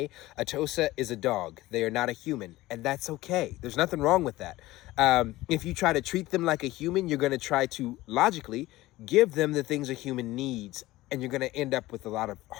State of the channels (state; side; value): quieter; right; 17.7 dB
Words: A Tosa is a dog. They are not a human, and that's okay. There's nothing wrong with that. If you try to treat them like a human, you're going to try to logically give them the things a human needs, and you're going to end up with a lot of